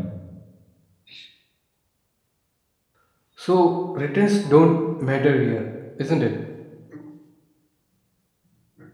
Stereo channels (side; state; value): both; identical; correlation 1.00